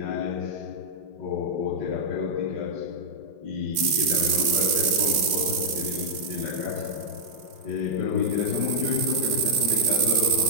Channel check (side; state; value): left; late; 5.6 ms